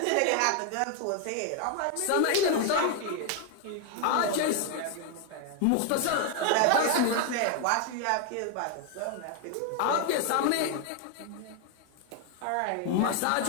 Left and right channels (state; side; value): different; both; correlation 0.00